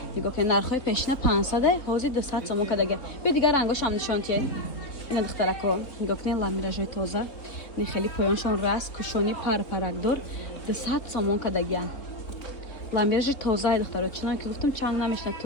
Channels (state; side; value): late; right; 3.8 ms